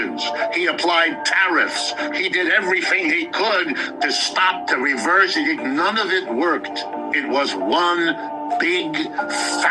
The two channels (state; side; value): identical; both; correlation 1.00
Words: He applied tariffs. He did everything he could to stop, to reverse. None of it worked. It was one big,